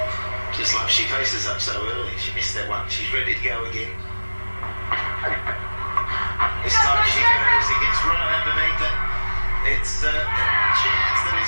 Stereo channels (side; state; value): both; inverted; correlation -1.00